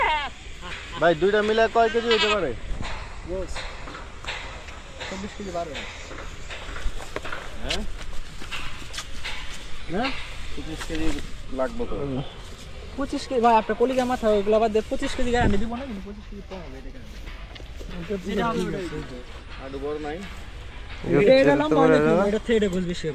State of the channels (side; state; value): both; identical; correlation 1.00